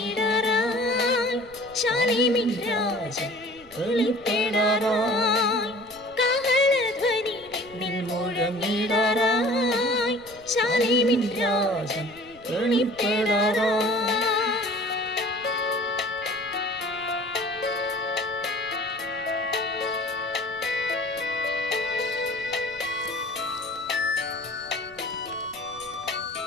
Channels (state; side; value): noise; right; rumble, 25 dB below the sound